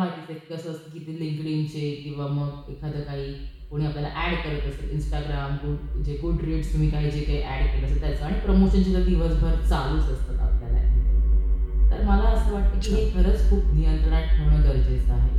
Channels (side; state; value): both; identical; correlation 1.00